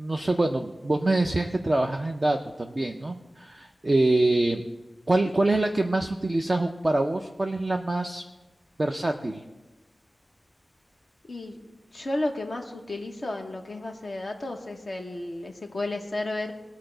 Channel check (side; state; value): both; normal; correlation 0.97